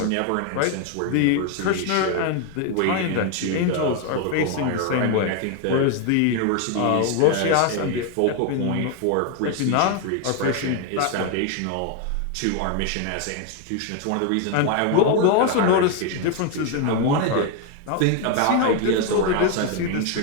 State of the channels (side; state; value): both; different; correlation 0.01